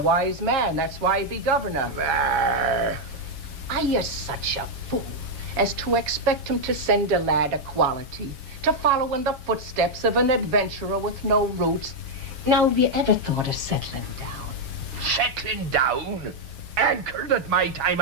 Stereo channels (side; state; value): left; late; 7.4 ms